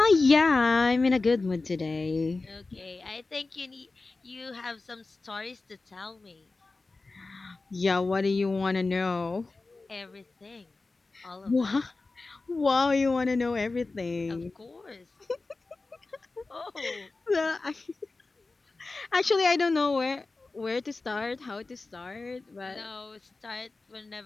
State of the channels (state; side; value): quieter; right; 3.6 dB